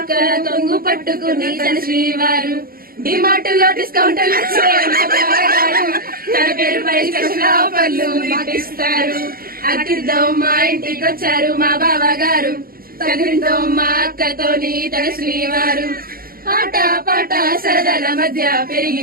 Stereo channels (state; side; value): late; left; 0.43 ms